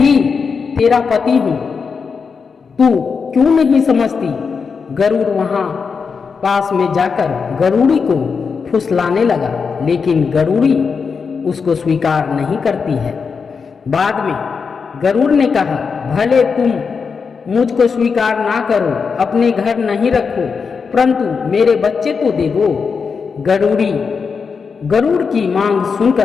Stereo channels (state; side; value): quieter; right; 5.5 dB